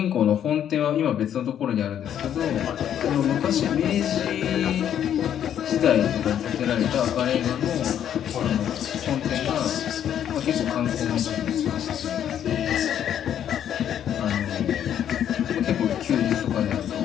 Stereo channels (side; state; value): right; quieter; 9.9 dB